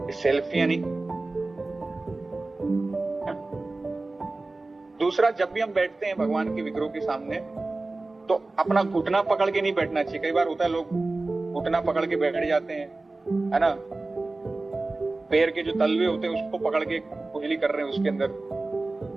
सेल्फियां नहीं। दूसरा, जब भी हम बैठते हैं भगवान के विग्रहों के सामने, तो अपना घुटना पकड़ के नहीं बैठना चाहिए। कई बार होता है लोग घुटना पकड़ के बैठ जाते हैं, है ना, पैर के जो तलवे होते हैं उसको पकड़ के कुंडली कर रहे हैं उसके अंदर,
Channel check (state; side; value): quieter; left; 3.2 dB